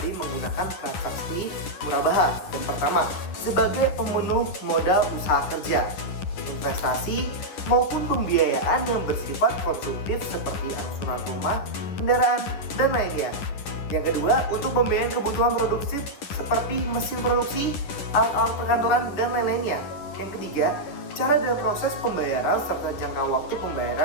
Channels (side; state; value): right; late; 10 ms